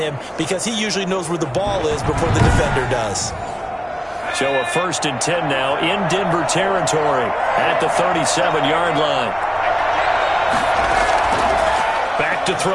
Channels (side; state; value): both; identical; correlation 1.00